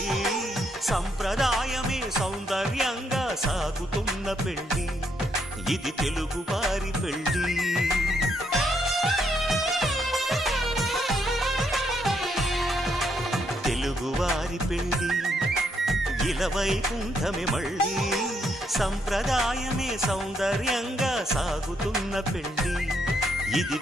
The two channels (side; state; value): both; normal; correlation 0.75